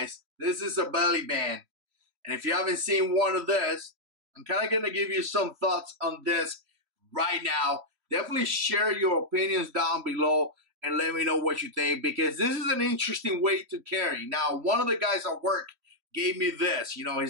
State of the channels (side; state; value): left; late; 3.0 ms